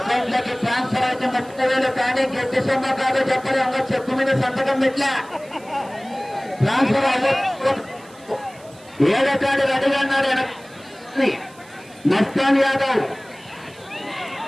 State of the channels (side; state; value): right; noise; hiss, 25 dB below the sound